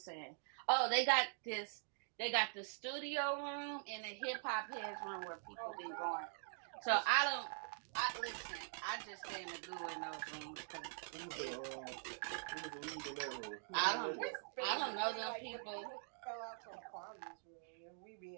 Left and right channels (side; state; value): left; silent; digital silence